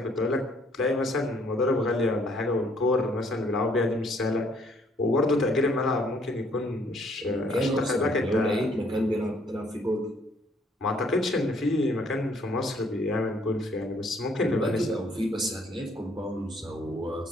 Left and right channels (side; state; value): both; normal; correlation 0.64